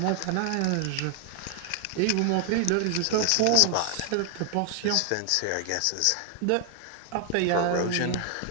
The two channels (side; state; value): both; different; correlation 0.00